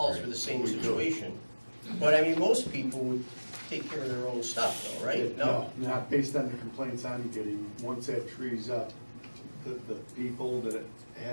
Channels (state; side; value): inverted; both; correlation -1.00